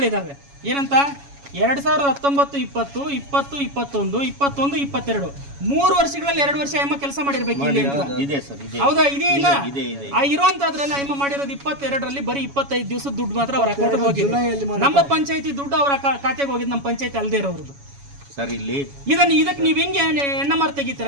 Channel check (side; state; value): left; late; 7.1 ms